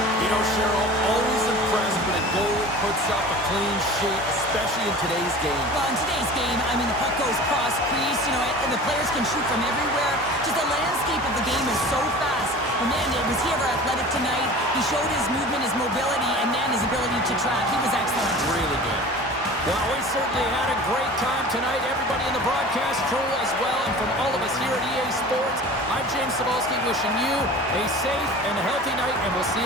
You know, Cheryl, always impressed when a goalie puts up a clean sheet, especially in today's game. Well, in today's game, I mean, the puck goes cross-crease, you know, and the players can shoot from everywhere. Just the landscape of the game is so fast. And man, was he ever athletic tonight? He showed his movement, his mobility, and man, his ability to track. He was excellent. Really good. Well, we certainly had a great time tonight. Everybody in the broadcast crew as well. And from all of us here at EA Sports, I'm James Cebulski wishing you a safe and healthy night, and we'll see you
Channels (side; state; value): both; normal; correlation 0.39